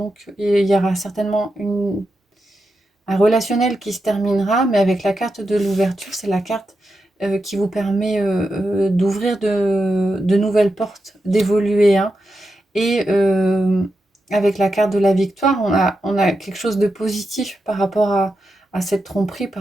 il y aura certainement un relationnel qui se terminera, mais avec la carte de l'ouverture, c'est la carte qui vous permet d'ouvrir de nouvelles portes, d'évoluer, hein. Et avec la carte de la victoire, on a quelque chose de positif par rapport à cette tromperie,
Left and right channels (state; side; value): normal; both; correlation 0.88